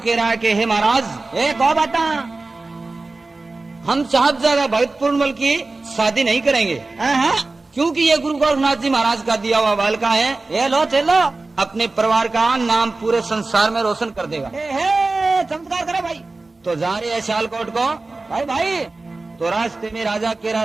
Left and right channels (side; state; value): left; quieter; 3.4 dB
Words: रहा है कि हे महाराज, एक और बता, हम साहबजादा भगत पूर्णमल की शादी नहीं करेंगे, क्योंकि ये गुरु गोरखनाथ जी महाराज का दिया हुआ बालका है। ये लो चलो, अपने परिवार का नाम पूरे संसार में रोशन कर देगा। चमत्कार करो भाई। तो जा रहे हैं सियालकोट को। भाई भाई, तो रास्ते में राजा कह